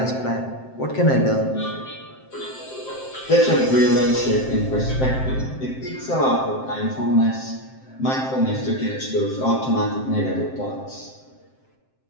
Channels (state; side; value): late; right; 7.6 ms